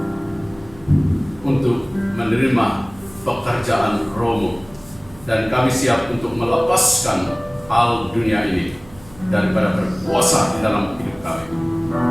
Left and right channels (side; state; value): right; noise; hum, 22 dB below the sound